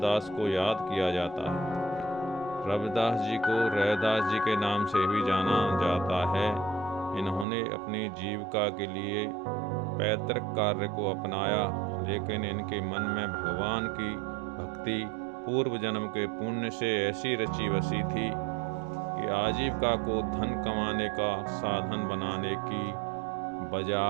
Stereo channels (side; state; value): left; drops out; at 7.5 s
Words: को याद किया जाता है। रविदास जी को रैदास जी के नाम से भी जाना जाता है। इन्होंने अपनी जीविका के लिए पैतृक कार्य को अपनाया, लेकिन इनके मन में भगवान की भक्ति पूर्व जन्म के पुण्य से ऐसी रची बसी थी कि आजीविका को धन कमाने का साधन बनाने की